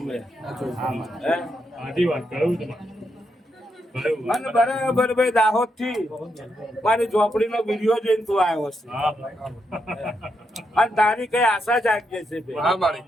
મેં અને બરાબર ભાઈ દાહોદ થી મારી ઝોપડી નો વિડીયો જોઈને તું આવ્યો છે અને તારી કઈ આશા જાગી છે ભાઈ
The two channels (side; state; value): both; normal; correlation 0.81